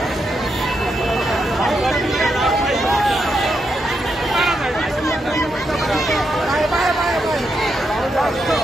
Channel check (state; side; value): normal; both; correlation 0.83